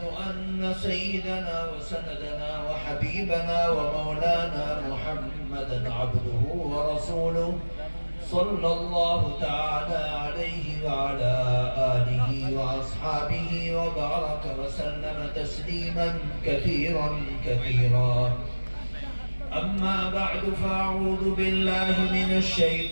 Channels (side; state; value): both; inverted; correlation -1.00